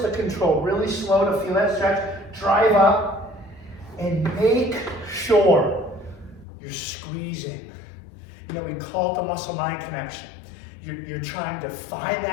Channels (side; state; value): right; drops out; at 6.5 s